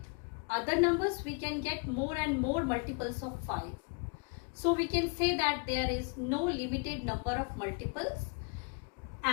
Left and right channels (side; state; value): right; quieter; 35.0 dB